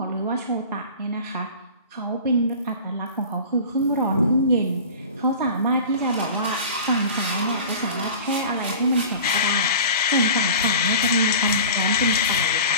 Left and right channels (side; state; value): both; inverted; correlation -0.37